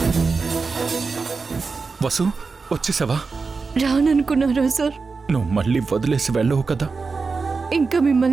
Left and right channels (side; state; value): left; quieter; 4.5 dB